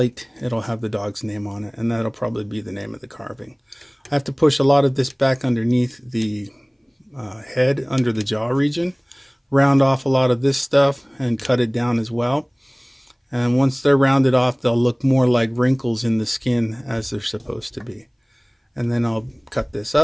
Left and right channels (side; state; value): both; identical; correlation 1.00